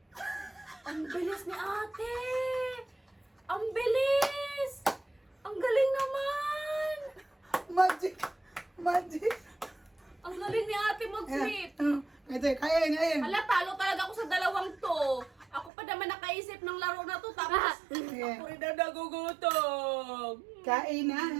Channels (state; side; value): drops out; left; at 15.7 s